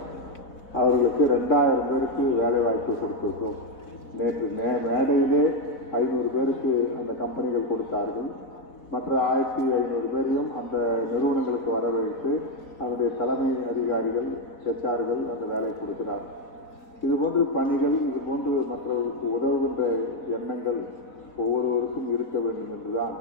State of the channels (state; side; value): late; right; 4.1 ms